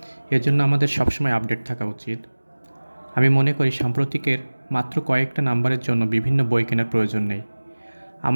এজন্য আমাদের সবসময় আপডেট থাকা উচিত। আমি মনে করি সাম্প্রতিকের মাত্র কয়েকটা নাম্বারের জন্য বিভিন্ন বই কেনার প্রয়োজন নেই।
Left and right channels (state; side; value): inverted; both; correlation -1.00